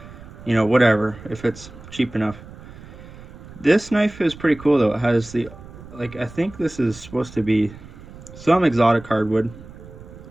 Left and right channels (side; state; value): right; noise; rumble, 17 dB below the sound